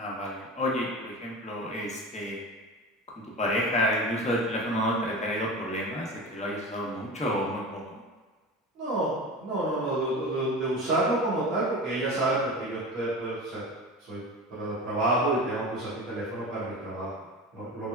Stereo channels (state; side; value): normal; both; correlation 0.31